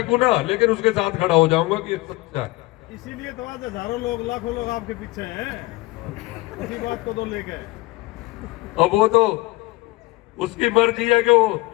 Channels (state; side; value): quieter; right; 21.1 dB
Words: ना, लेकिन उसके साथ खड़ा हो जाऊंगा कि ये सच्चा है। इसीलिए तो आज हजारों लोग लाखों लोग आपके पीछे हैं, इसी बात को तो लेके। अब वो तो उसकी मर्जी है कि वो